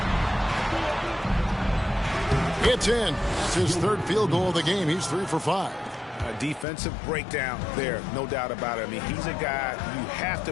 It's in. It's his third field goal of the game. He's 3 for 5. A defensive breakdown there, no doubt about it. I mean, he's a guy you have to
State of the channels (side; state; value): right; drops out; at 6.7 s